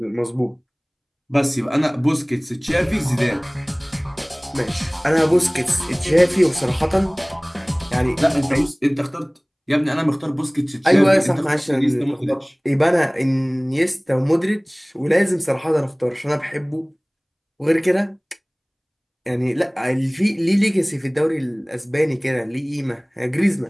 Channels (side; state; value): both; identical; correlation 1.00